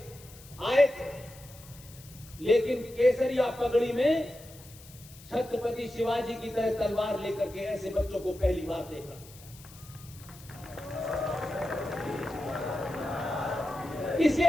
आए थे, लेकिन केसरिया पगड़ी में छत्रपति शिवाजी की तरह तलवार लेकर के ऐसे बच्चों को पहली बार देखा।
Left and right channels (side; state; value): left; noise; hiss, 20 dB below the sound